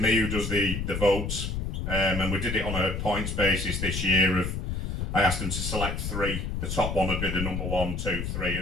who does the votes, and we did it on a points basis this year. I asked them to select 3. The top one would be the number 1, 2, 3,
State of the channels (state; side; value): noise; left; rumble, 3 dB below the sound